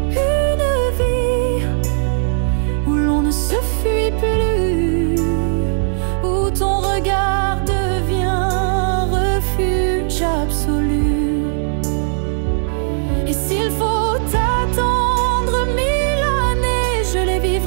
Et s'il faut attendre 1000 années, je les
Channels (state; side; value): silent; left; 68 dB below the other